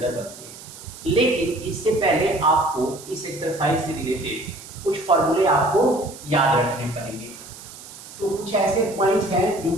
बनते हैं। लेकिन इससे पहले आपको इस एक्सरसाइज से रिलेटेड कुछ फॉर्मूले आपको याद रखने पड़ेंगे। तो कुछ ऐसे पॉइंट्स हैं जो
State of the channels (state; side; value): noise; right; hiss, 16 dB below the sound